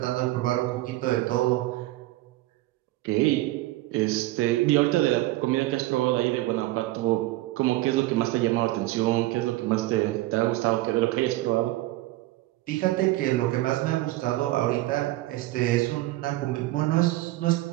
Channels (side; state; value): left; quieter; 17.8 dB